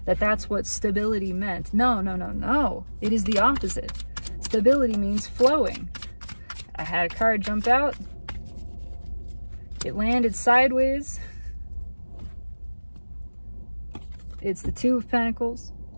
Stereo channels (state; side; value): inverted; both; correlation -1.00